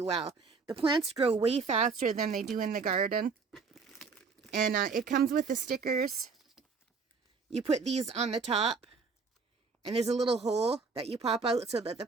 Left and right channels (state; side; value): quieter; left; 4.8 dB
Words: well. The plants grow way faster than they do in the garden. And it comes with the stickers. You put these on the top. And there's a little hole that you pop out so that the